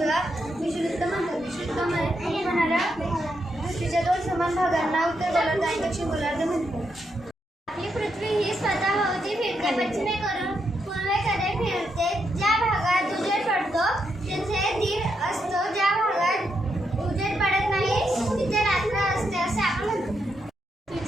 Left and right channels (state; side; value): normal; both; correlation 0.81